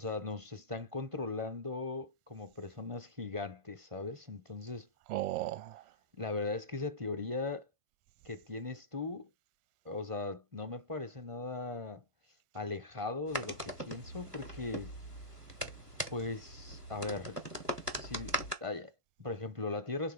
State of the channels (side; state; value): left; late; 1.3 ms